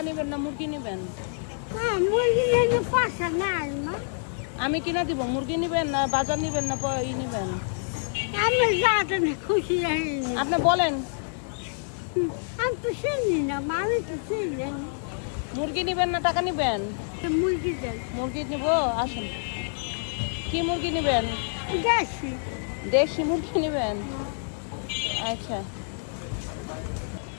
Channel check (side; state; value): right; silent; digital silence